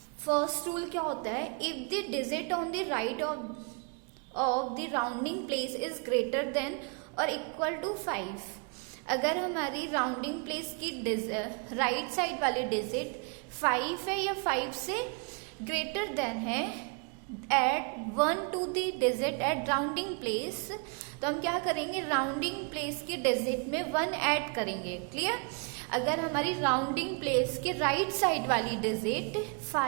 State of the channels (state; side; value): quieter; left; 36.4 dB